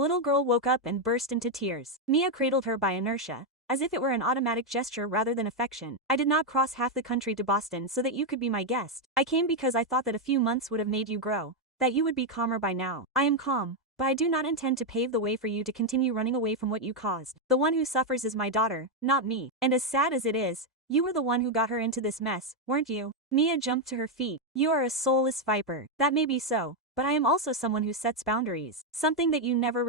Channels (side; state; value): both; normal; correlation 0.03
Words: girl woke up and burst into tears. Mia cradled her by inertia, as if it were an automatic gesture rather than affection. I did not cross half the country to Boston so that you could be my guest. I came because I thought that a few months would have made you grow, that you would be calmer by now. I am calm, but I do not intend to pave the way for you to continue running away from what you caused. The one who suffers is my daughter, not me. And as sad as it is, you were the one who got her into this mess, weren't you? Mia jumped to her feet. You are a soulless viper. That may be so, but I am also someone who sets boundaries. Something that you never